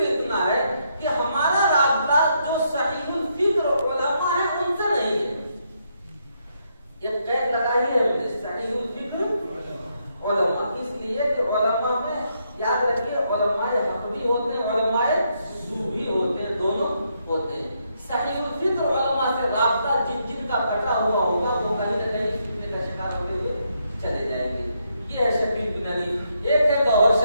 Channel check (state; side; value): inverted; both; correlation -0.77